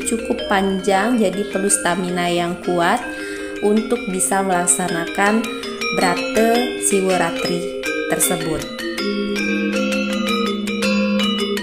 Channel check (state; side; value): identical; both; correlation 1.00